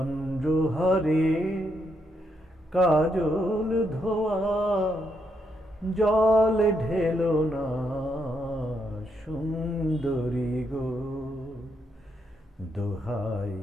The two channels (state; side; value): normal; both; correlation 0.78